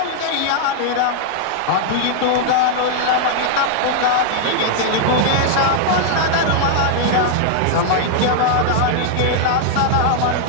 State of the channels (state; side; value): different; both; correlation -0.01